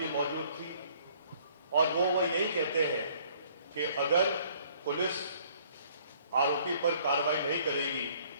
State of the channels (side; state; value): both; inverted; correlation -0.59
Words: मौजूद थी और वो यही कहते हैं कि अगर पुलिस आरोपी पर कार्रवाई नहीं करेगी